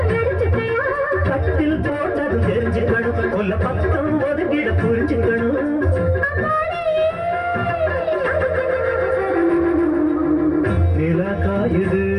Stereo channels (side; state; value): both; identical; correlation 1.00